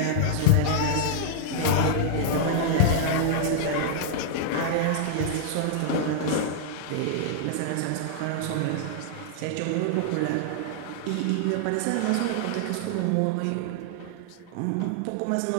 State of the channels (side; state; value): both; different; correlation -0.01